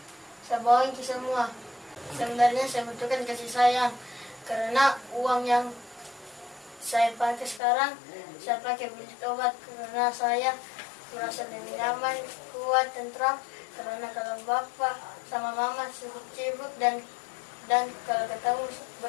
saya bohongin ke semua. Sebenarnya saya butuhkan kasih sayang karena uang yang saya pakai sekarang saya pakai beli obat karena saya merasa lebih nyaman, kuat, tentram karena kalau bapak sama mama sibuk-sibuk dan kalau ketemu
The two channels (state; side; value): drops out; right; at 7.6 s